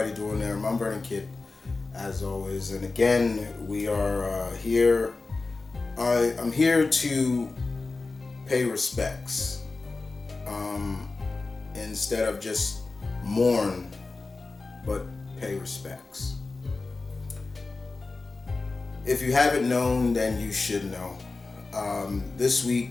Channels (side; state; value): right; quieter; 3.7 dB